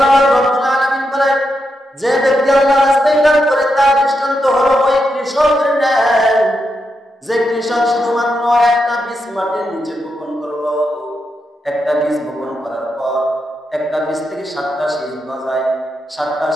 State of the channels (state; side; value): normal; both; correlation 0.84